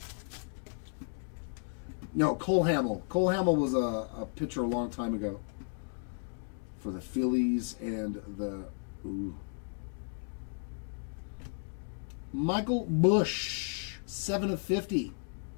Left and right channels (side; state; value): right; silent; 55 dB below the other